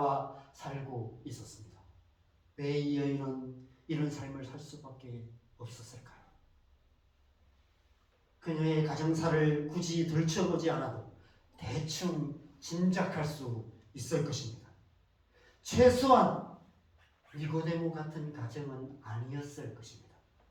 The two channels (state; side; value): identical; both; correlation 1.00